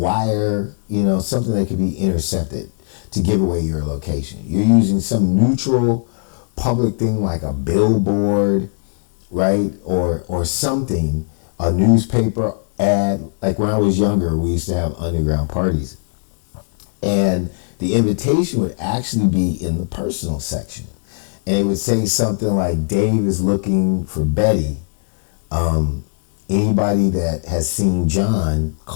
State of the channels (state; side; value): silent; right; 67 dB below the other